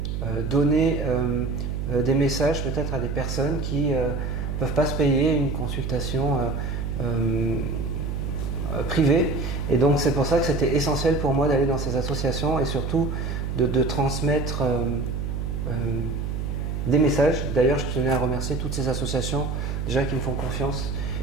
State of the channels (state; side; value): noise; right; hum, 3 dB below the sound